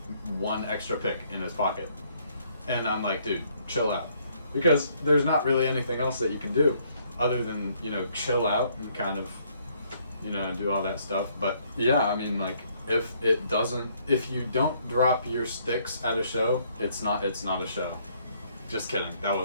1 extra pick in his pocket. And I'm like, dude, chill out. Because there's not really anything else that you can do other than, chill out and kind of, do all that stuff. But yeah, I mean, like, if you don't drop your sticks at a show, it's not a show. Just kidding. That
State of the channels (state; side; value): inverted; both; correlation -0.67